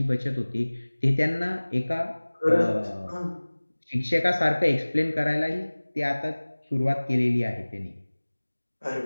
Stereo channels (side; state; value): both; inverted; correlation -1.00